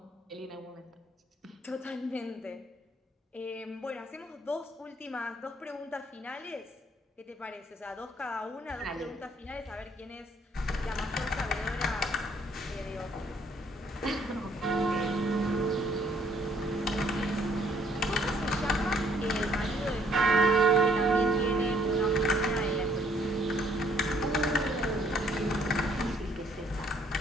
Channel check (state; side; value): normal; both; correlation 0.64